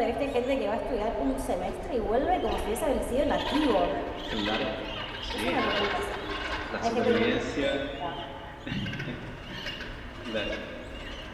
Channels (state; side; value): identical; both; correlation 1.00